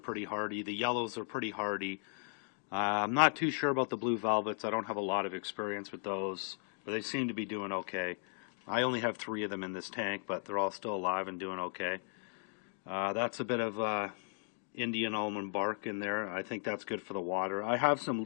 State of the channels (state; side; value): silent; right; 54 dB below the other